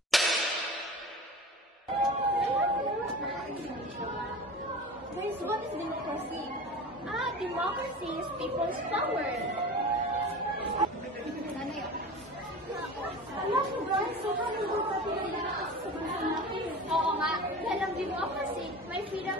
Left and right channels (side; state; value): both; normal; correlation 0.34